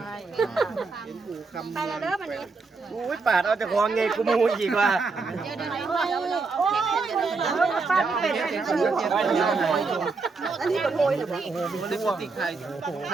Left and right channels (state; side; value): quieter; left; 4.2 dB